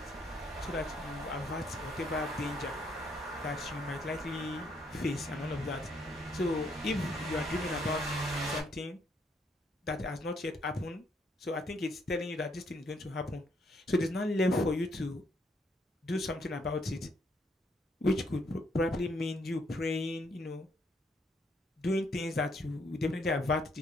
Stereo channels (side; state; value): both; normal; correlation 0.71